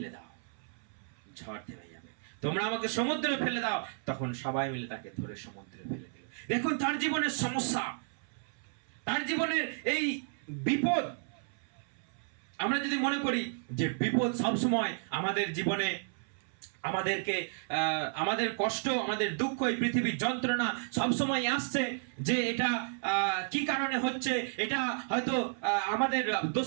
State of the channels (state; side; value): silent; left; 56 dB below the other